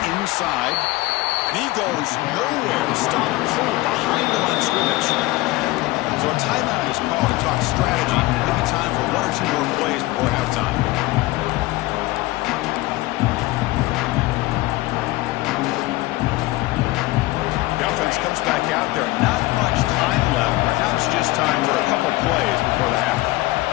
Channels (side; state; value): right; quieter; 19.6 dB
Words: inside. And he goes nowhere. Stop pull behind the line of scrimmage. So a timeout is called to talk strategy. Maybe time for 1 or 2 more plays before halftime. Comes back out there. Not much time left. Perhaps just time for a couple plays before the half.